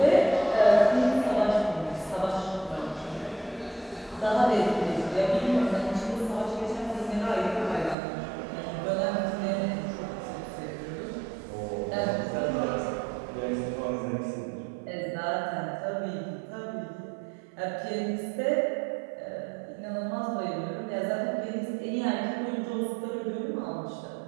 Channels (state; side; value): drops out; left; at 8.0 s